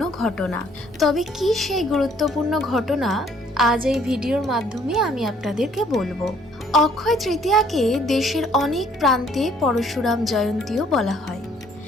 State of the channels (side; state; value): right; noise; rumble, 28 dB below the sound